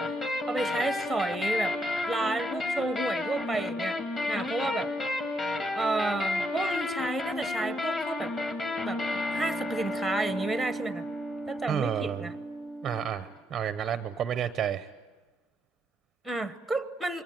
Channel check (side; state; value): both; normal; correlation 0.77